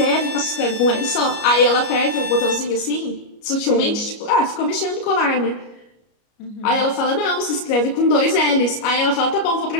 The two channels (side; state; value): right; late; 33 ms